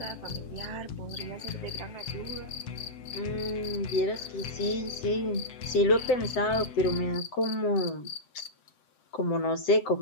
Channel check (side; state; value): right; late; 7.7 ms